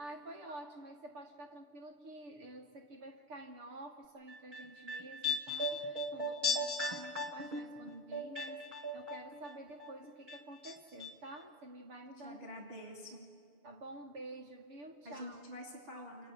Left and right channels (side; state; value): left; late; 6.8 ms